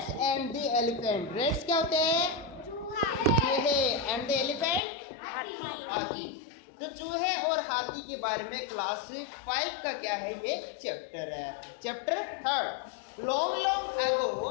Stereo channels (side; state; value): right; drops out; at 4.8 s